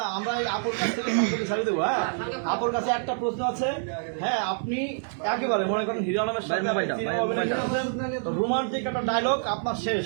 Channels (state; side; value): silent; left; digital silence